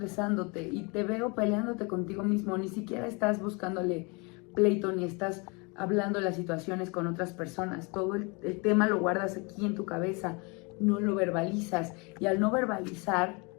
y te veo peleándote contigo mismo. Ni siquiera estás buscándole pleito ni estás hablando de las situaciones con otras personas. Todo el tema lo guardas aquí en tu cabeza, no lo verbalizas y al no verbalizar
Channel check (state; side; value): quieter; right; 30.1 dB